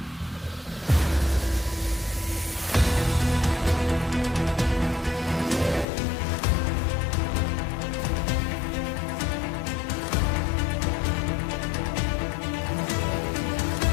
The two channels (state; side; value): drops out; right; at 5.9 s